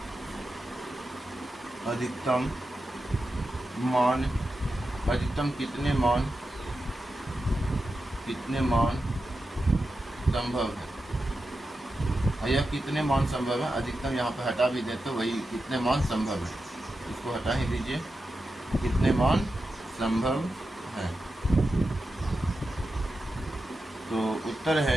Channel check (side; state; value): both; normal; correlation 0.90